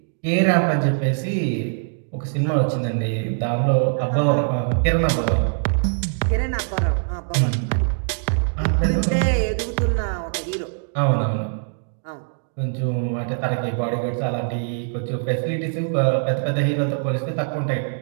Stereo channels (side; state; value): left; silent; 64 dB below the other